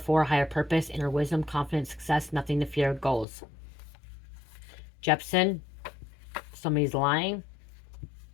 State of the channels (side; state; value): right; drops out; at 3.2 s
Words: Higher Purpose, Inner Wisdom, Confidence, Success, Nothing to Fear, Goals. Jepson, somebody's lying.